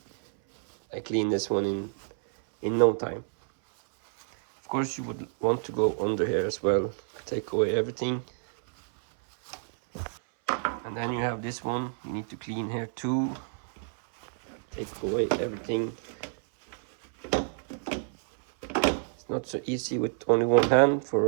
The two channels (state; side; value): silent; left; 59 dB below the other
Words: I cleaned this one in no time. Of course you would want to go under here as well, take away everything. And then you have this one, you need to clean here too, take away everything. It's not so easy with only one hand